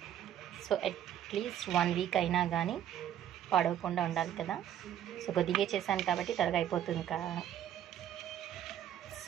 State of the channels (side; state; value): left; quieter; 10.7 dB